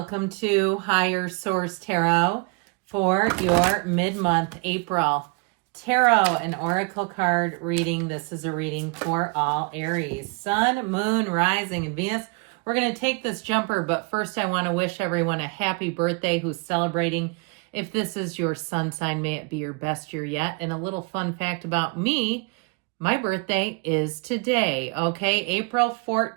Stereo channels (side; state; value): left; quieter; 31.0 dB